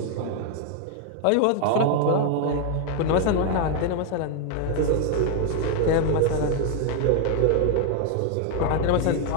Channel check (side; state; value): both; different; correlation 0.00